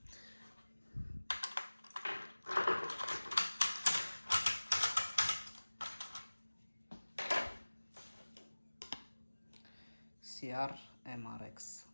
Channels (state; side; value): inverted; both; correlation -1.00